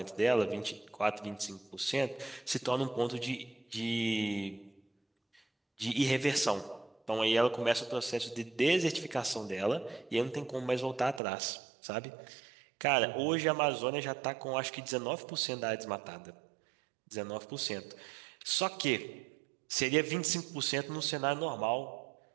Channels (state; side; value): drops out; left; at 11.2 s